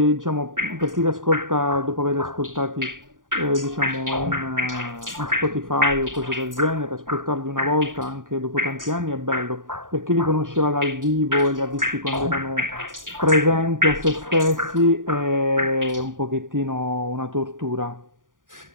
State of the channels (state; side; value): late; left; 0.89 ms